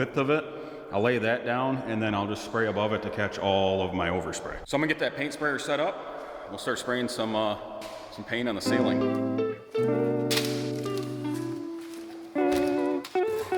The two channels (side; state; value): both; identical; correlation 1.00